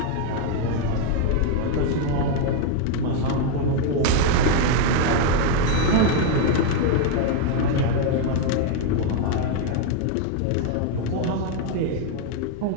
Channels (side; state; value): both; different; correlation 0.01